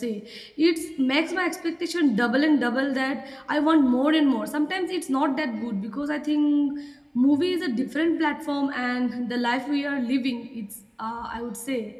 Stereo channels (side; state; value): both; identical; correlation 1.00